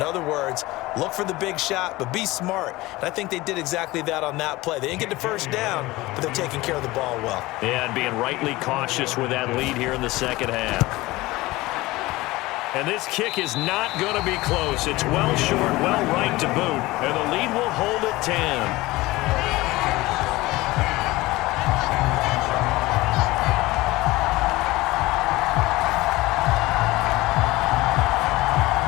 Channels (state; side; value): quieter; right; 19.7 dB